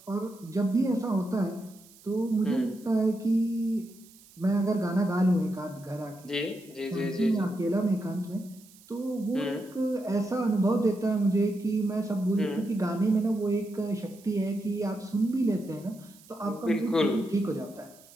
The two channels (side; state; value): right; noise; hiss, 24 dB below the sound